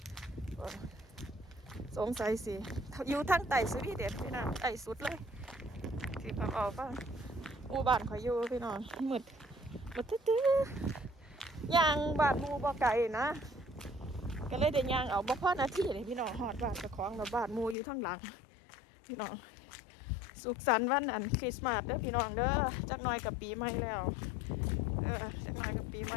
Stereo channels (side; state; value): right; drops out; at 17.8 s